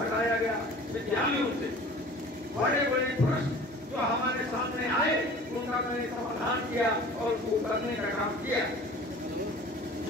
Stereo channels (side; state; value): both; normal; correlation 0.44